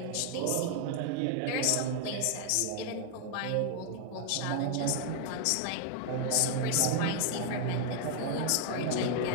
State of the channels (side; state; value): both; different; correlation 0.00